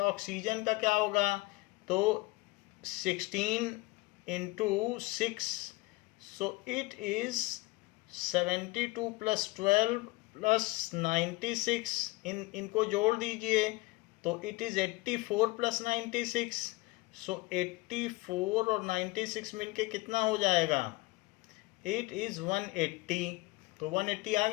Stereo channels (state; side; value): quieter; right; 22.4 dB